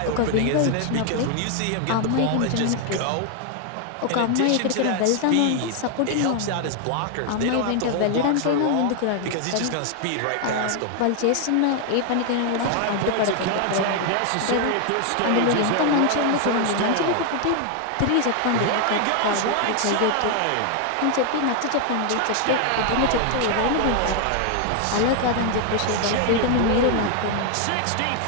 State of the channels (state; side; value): different; both; correlation 0.00